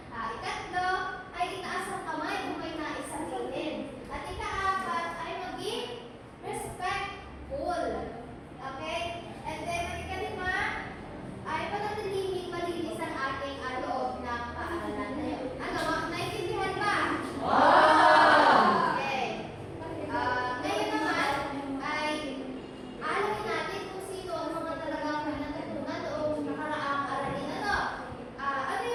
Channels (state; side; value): identical; both; correlation 1.00